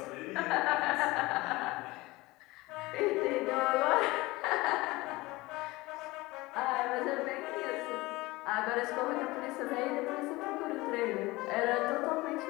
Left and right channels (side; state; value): right; quieter; 21.0 dB